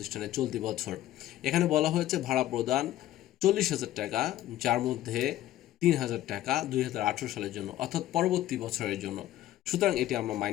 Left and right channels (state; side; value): quieter; right; 13.9 dB